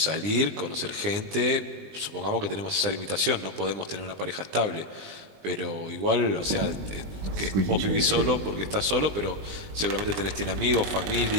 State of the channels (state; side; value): late; left; 20 ms